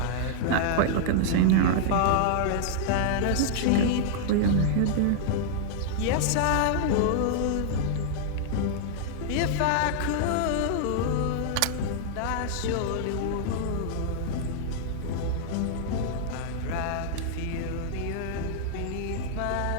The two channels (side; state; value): both; different; correlation -0.01